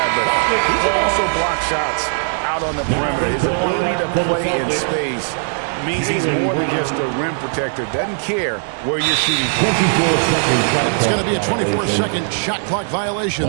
but he can also block shots out on the perimeter. His ability to play in space means he's more than just a rim protector. Doesn't care where you're shooting from. And it's going to be a 24-second shot clock violation.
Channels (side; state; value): left; silent; digital silence